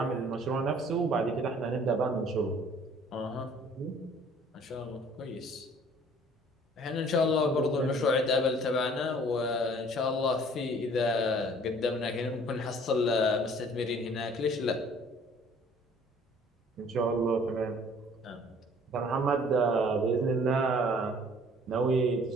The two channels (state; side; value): normal; both; correlation 0.54